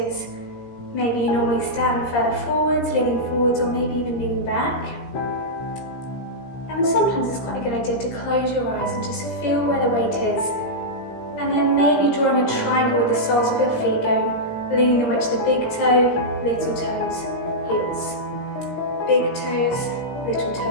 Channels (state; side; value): late; right; 17 ms